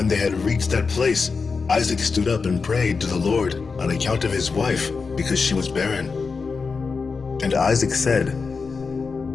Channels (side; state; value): right; quieter; 4.8 dB